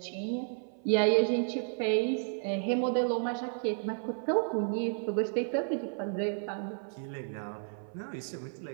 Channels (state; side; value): silent; left; 56 dB below the other